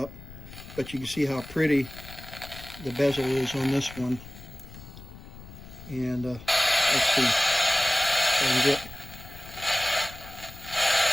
But you can see how pretty the bezel is on this one. And let's see if I can get...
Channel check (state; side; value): noise; left; rumble, 16 dB below the sound